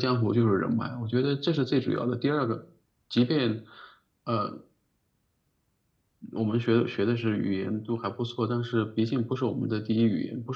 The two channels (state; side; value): identical; both; correlation 1.00